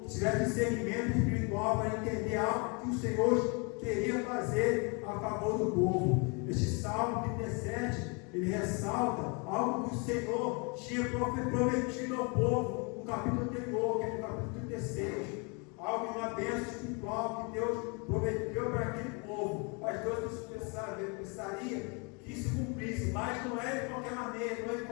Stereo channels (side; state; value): right; quieter; 32.9 dB